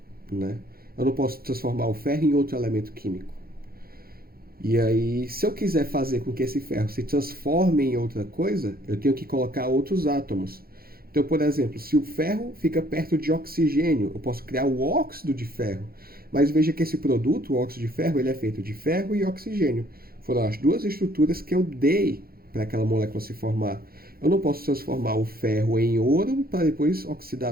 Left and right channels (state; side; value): late; left; 0.44 ms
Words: né? Eu não posso transformar o ferro em outro elemento químico. E aí, se eu quiser fazer com que esse ferro se transforme em outra coisa, eu tenho que colocar outros átomos. Então, por exemplo, se o ferro fica perto de oxigênio, eu posso criar o óxido de ferro. Mas veja que esse produto, o óxido de ferro, ele é feito de ferro e oxigênio. Foram as duas estruturas que eu dei para aquela molécula se formar. Eu não posso transformar o ferro em ouro para depois